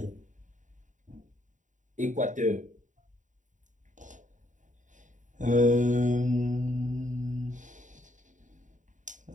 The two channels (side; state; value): left; late; 0.36 ms